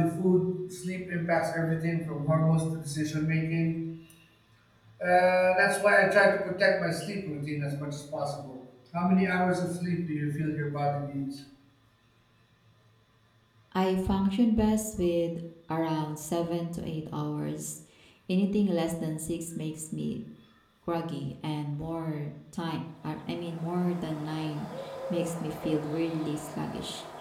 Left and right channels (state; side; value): identical; both; correlation 1.00